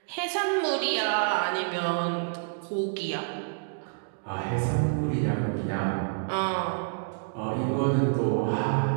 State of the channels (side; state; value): left; silent; digital silence